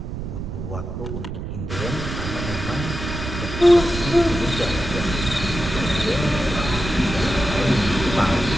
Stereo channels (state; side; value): noise; right; rumble, 6 dB below the sound